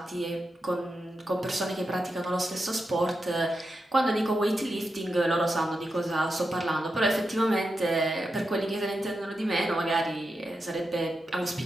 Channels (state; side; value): normal; both; correlation 0.88